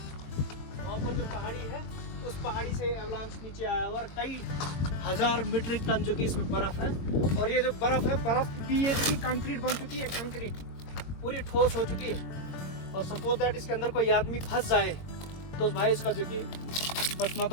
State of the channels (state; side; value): late; right; 22 ms